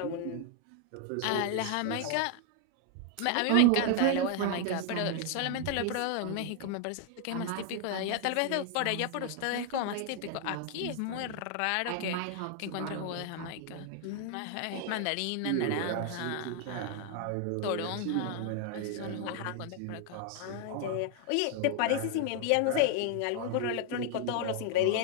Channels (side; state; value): both; different; correlation 0.00